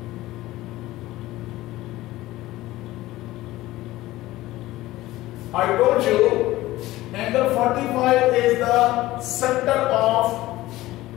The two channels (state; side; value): quieter; right; 17.1 dB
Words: I told you angle 45 is the center of